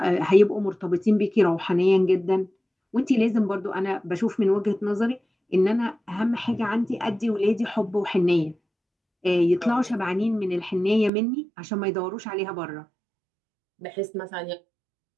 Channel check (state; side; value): drops out; left; at 11.1 s